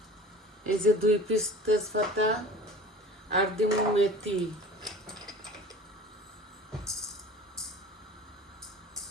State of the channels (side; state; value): both; normal; correlation 0.41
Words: এই যে 2 পিস তেজপাতা, আর দিমু মেথি।